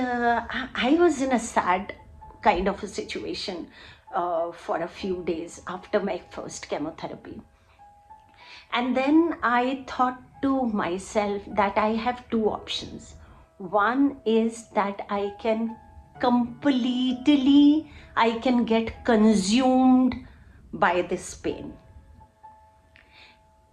was in a sad kind of a situation for a few days after my first chemotherapy. And then I thought to myself that I have two options. One is that I can get consumed by this pain.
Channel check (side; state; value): both; identical; correlation 1.00